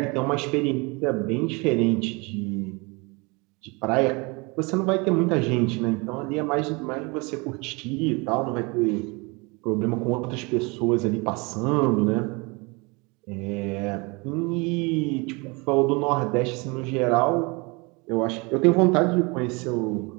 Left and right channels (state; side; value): quieter; left; 27.9 dB